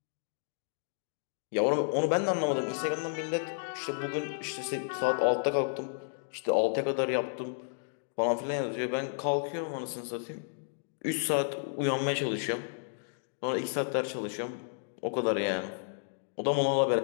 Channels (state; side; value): silent; right; digital silence